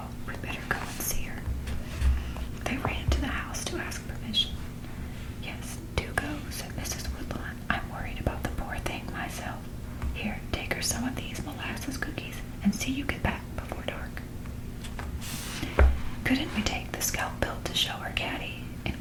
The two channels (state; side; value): identical; both; correlation 1.00